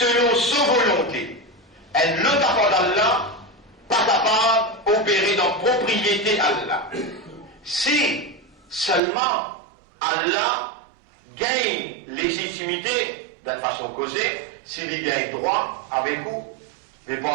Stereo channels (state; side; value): drops out; left; at 9.0 s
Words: sa volonté. Et le tapant d'Allah, pas capable d'opérer dans propriété Allah. Si seulement Allah gagne légitimité d'une façon causée, s'il gagne droit avec vous, mais